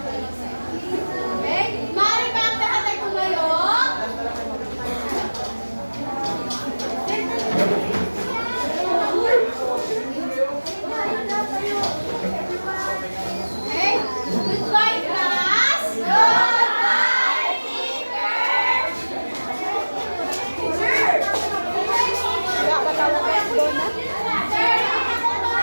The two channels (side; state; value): both; inverted; correlation -1.00